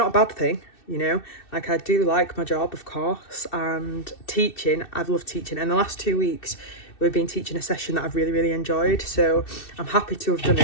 a bad thing. You know, like I do like my job, of course, and teaching, I've loved teaching. And the last 2 weeks, we've been teaching a session that I've really enjoyed. So I'm happy to have done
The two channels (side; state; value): right; late; 2.6 ms